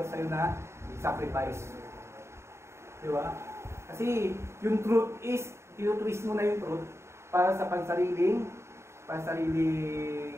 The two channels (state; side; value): late; left; 0.13 ms